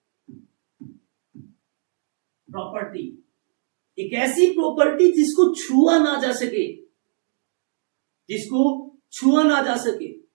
एक ऐसी प्रॉपर्टी जिसको छुआ ना जा सके, जिसको छुआ ना जा सके।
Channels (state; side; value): silent; left; digital silence